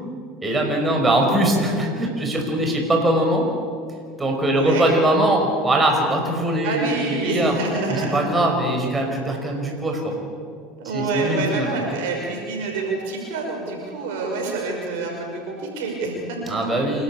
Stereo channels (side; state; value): both; normal; correlation 0.45